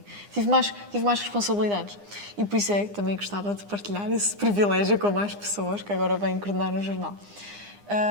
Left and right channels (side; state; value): left; late; 9.8 ms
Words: Tive mais responsabilidades. E por isso é que também gostava de partilhar esse privilégio com mais pessoas que agora vêm coordenar o jornal.